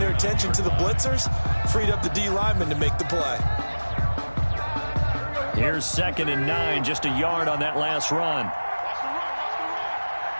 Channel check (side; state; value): both; inverted; correlation -1.00